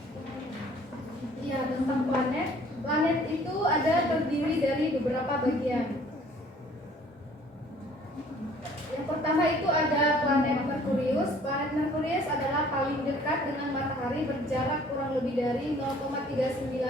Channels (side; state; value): both; normal; correlation 0.55